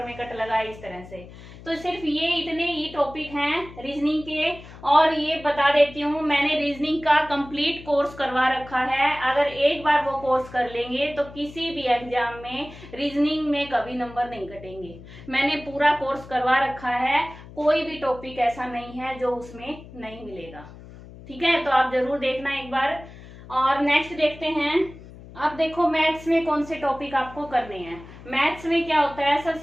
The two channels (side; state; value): left; noise; hum, 17 dB below the sound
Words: में कट लगाए इस तरह से। तो सिर्फ ये इतने ही टॉपिक हैं रीजनिंग के। और ये बता देती हूँ, मैंने रीजनिंग का कंप्लीट कोर्स करवा रखा है, अगर एक बार वो कोर्स कर लेंगे तो किसी भी एग्जाम में रीजनिंग में कभी नंबर नहीं कटेंगे। मैंने पूरा कोर्स करवा रखा है, कोई भी टॉपिक ऐसा नहीं है जो उसमें नहीं मिलेगा, ठीक है, तो आप जरूर देखना एक बार। और नेक्स्ट देखते हैं, अब देखो मैथ्स में कौन से टॉपिक आपको करने हैं। मैथ्स में क्या होता है,